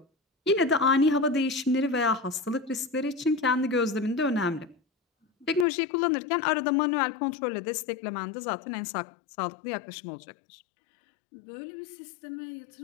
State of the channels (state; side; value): drops out; right; at 5.7 s